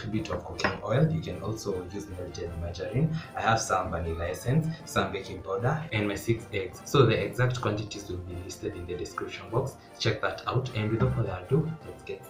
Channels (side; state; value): both; identical; correlation 1.00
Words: bit of cooking oil. You can also use melted margarine. I have some vanilla essence, some baking powder, and my 6 eggs. So the exact quantities will be listed in the description box. Check that out, and without further ado, let's get